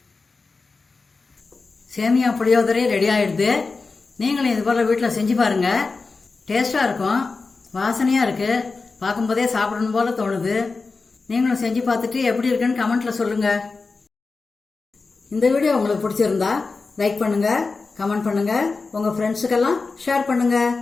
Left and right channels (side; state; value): right; quieter; 4.1 dB